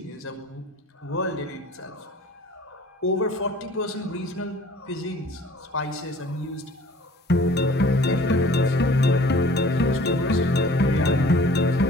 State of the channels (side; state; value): both; normal; correlation 0.49